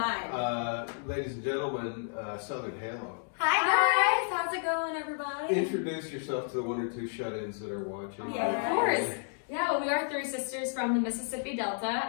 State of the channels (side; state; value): right; silent; digital silence